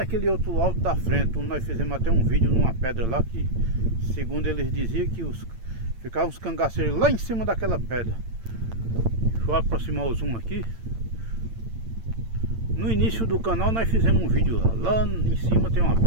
outro alto da frente, onde nós fizemos até um vídeo numa pedra lá, que segundo eles diziam que ficavam os cangaceiros lá em cima daquela pedra. Deixa eu aproximar o zoom aqui. No início do canal nós fizemos um vídeo lá em cima tem uma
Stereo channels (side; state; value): left; late; 8.9 ms